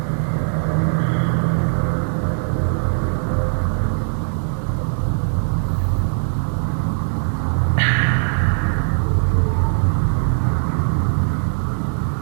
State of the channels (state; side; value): silent; left; digital silence